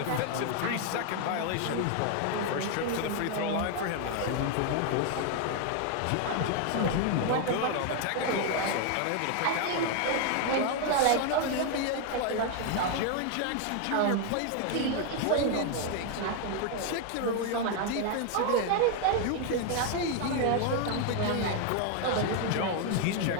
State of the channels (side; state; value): both; different; correlation 0.01